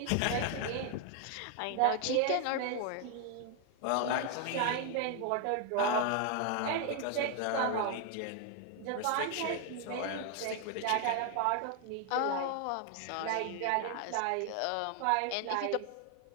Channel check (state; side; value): different; both; correlation 0.00